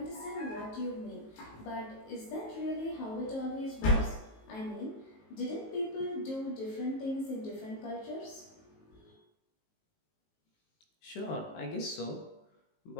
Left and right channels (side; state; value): right; late; 19 ms